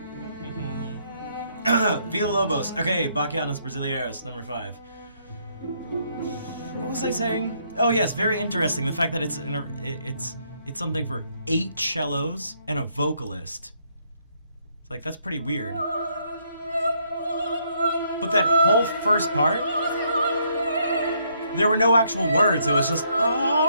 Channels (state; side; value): inverted; both; correlation -0.71